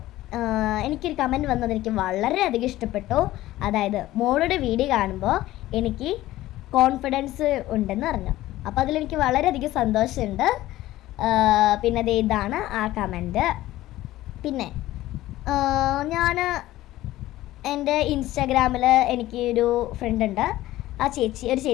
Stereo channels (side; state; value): right; quieter; 15.8 dB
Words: എനിക്കൊരു കമൻറ്റ് വന്നത് എനിക്ക് വളരെയധികം ഇഷ്ടപ്പെട്ടു. അതായത് മോളുടെ വീഡിയോ കാണുമ്പോൾ എനിക്ക് കോൺഫിഡൻസ് ഉണ്ടെന്ന് പറഞ്ഞു. അപ്പോൾ അതിലെനിക്ക് വളരെയധികം സന്തോഷമുണ്ട്. പിന്നെ ഇതാണ് ആ കമൻറ്റ്. പിന്നെ ഞാൻ എൻ്റെ ഇൻസ്റ്റാഗ്രാമിൽ എനിക്ക് ഒരു ഫ്രണ്ട് ഉണ്ട്. ഒരു